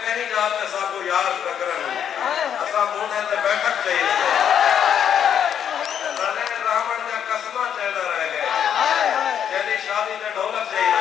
कहीं जाते साको याद प्रकरण असा मोने ते बैठक चाहिए, रावण का कसमा चलता रह गए, जल्दी शादी में ढोलक चाहिए।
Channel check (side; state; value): right; quieter; 8.8 dB